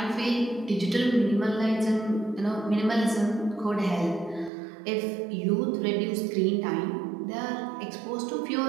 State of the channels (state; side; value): drops out; left; at 4.5 s